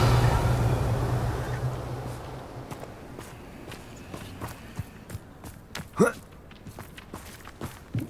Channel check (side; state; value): both; identical; correlation 1.00